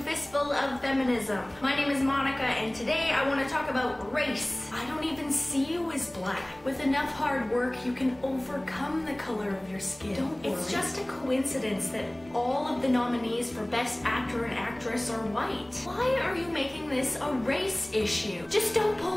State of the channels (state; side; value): noise; left; hum, 28 dB below the sound